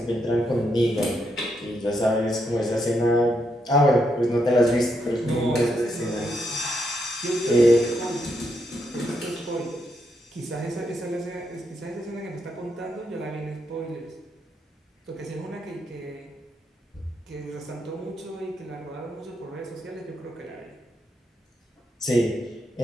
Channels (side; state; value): both; normal; correlation 0.79